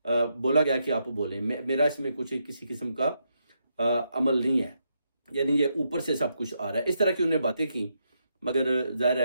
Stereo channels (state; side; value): inverted; both; correlation -0.80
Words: بولا گیا کہ آپ بولیں، میرا اس میں کچھ کسی قسم کا عمل نہیں ہے، یعنی یہ اوپر سے سب کچھ آ رہا ہے۔ اس طرح کی انہیں باتیں کی، مگر ظاہر